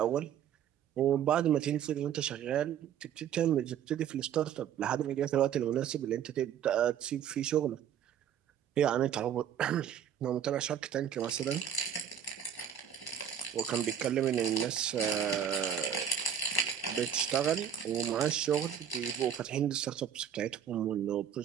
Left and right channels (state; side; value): quieter; left; 9.0 dB